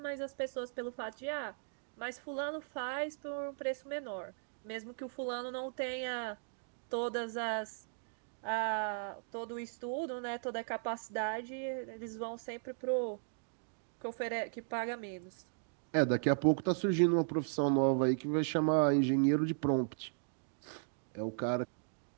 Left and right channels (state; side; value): silent; left; digital silence